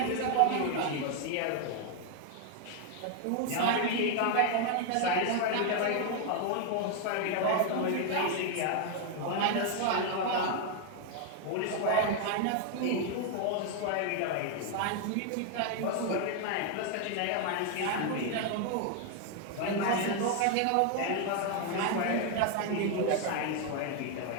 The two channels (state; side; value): different; both; correlation 0.01